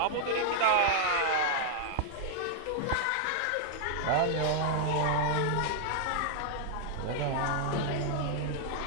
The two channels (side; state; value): both; different; correlation -0.01